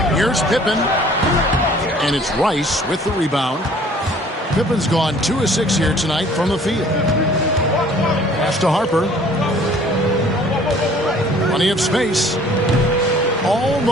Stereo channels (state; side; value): normal; both; correlation 0.54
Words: Here's Pippen. And it's Rice with the rebound. Pippen's gone 2 of 6 here tonight from the field. Pass to Harper. Plenty of space.